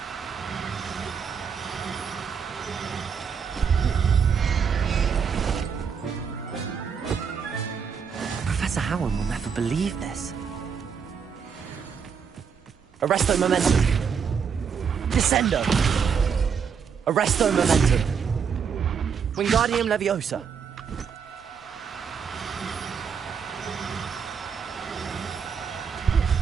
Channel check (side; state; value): left; quieter; 6.6 dB